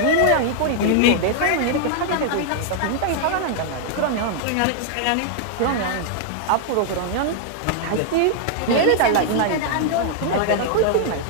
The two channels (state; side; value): different; both; correlation 0.00